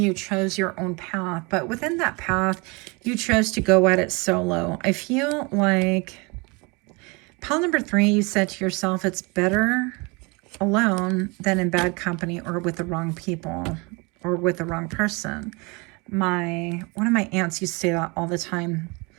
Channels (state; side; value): quieter; left; 28.0 dB